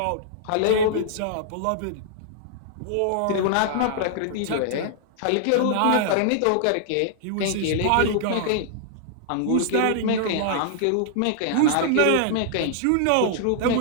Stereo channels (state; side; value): different; both; correlation -0.01